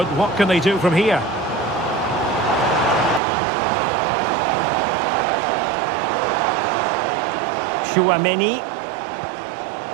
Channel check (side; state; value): left; drops out; at 3.2 s